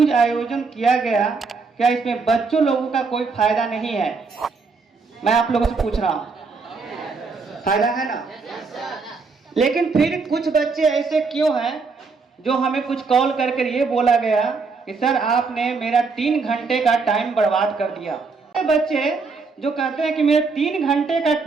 आयोजन किया गया, क्या इसमें बच्चों लोगों का कोई फायदा नहीं है? मैं आप लोगों से पूछ रहा हूँ, फायदा है ना? लेकिन फिर कुछ बच्चे ऐसे क्यों हैं जो हमें कुछ कॉल करके ये बोला गया कि कि सर आपने मेरा 3 घंटे का टाइम बर्बाद कर दिया। बच्चे जो कहते हैं कि मेरे 3 घंटे का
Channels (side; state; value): left; quieter; 4.5 dB